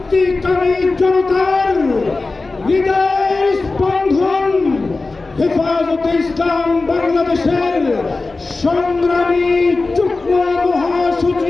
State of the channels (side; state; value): right; quieter; 3.6 dB